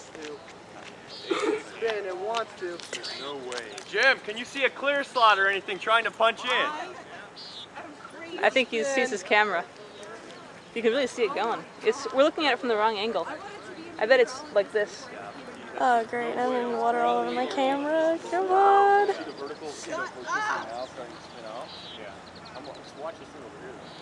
to. Spin, it wants to. There's no way. Jim, can you see a clear slot or anything trying to punch in? I think he sees his camera. You can really see it going. We're looking at it from the wrong angle. I bet it's like this. Oh great, I'm in water all over my camera. Come on.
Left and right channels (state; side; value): identical; both; correlation 1.00